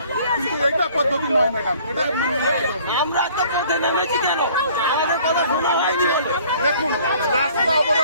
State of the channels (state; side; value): inverted; both; correlation -0.55